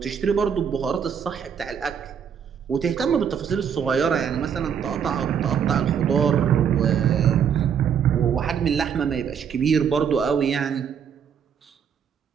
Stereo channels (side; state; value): left; quieter; 7.7 dB